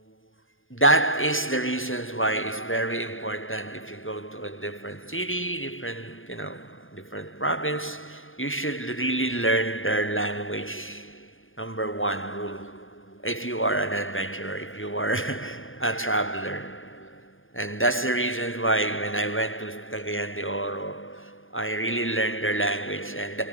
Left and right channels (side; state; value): right; late; 0.59 ms